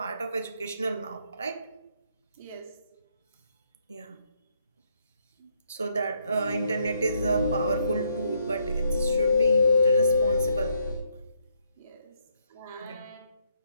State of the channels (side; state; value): both; inverted; correlation -0.73